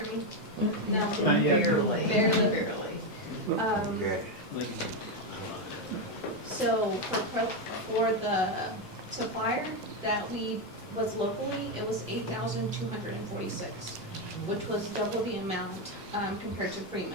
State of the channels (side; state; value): both; normal; correlation 0.07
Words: hear me? No, Barely. Barely. So for the supplier that we was locally, it was $8,246, which was double the amount compared to